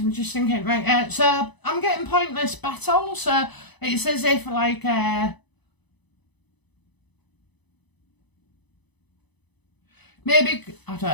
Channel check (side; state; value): right; late; 0.99 ms